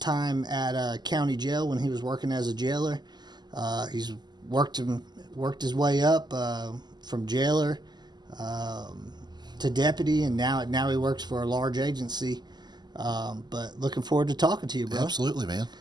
at county jail when he was working as a jailer. He's worked his way up from jailer to deputy, and now he works for a large agency. But looking forward to talking to you, bro. Absolutely, man.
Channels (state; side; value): late; left; 0.21 ms